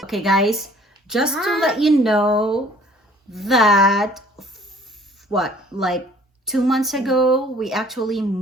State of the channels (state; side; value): normal; both; correlation 0.54